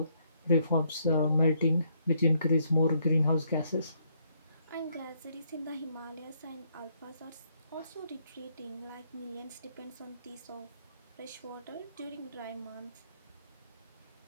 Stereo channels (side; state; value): both; inverted; correlation -0.72